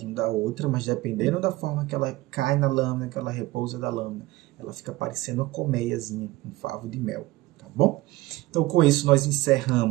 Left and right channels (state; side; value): quieter; left; 18.6 dB